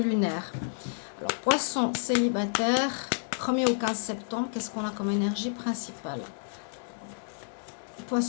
Alors, poisson célibataire, 1er au 15 septembre, qu'est-ce qu'on a comme énergie principale?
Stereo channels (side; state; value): right; silent; 58 dB below the other